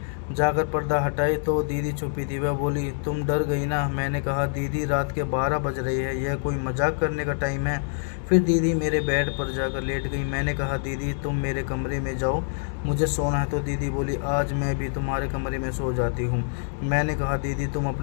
जाकर पर्दा हटाई तो दीदी छुपी थी। वह बोली, तुम डर गई ना? मैंने कहा, दीदी रात के 12 बज रहे हैं, यह कोई मजाक करने का टाइम है? फिर दीदी मेरे बेड पर जाकर लेट गई। मैंने कहा, दीदी तुम मेरे कमरे में जाओ, मुझे सोना है। तो दीदी बोली, आज मैं भी तुम्हारे कमरे में सो जाती हूँ। मैंने कहा, दीदी तुम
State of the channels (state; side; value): silent; right; digital silence